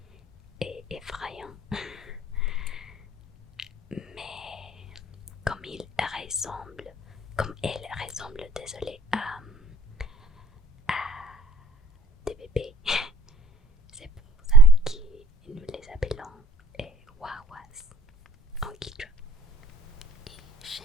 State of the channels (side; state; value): both; normal; correlation 0.54